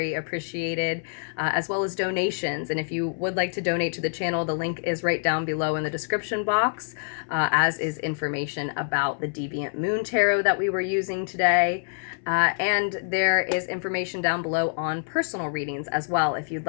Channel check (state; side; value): silent; right; 61 dB below the other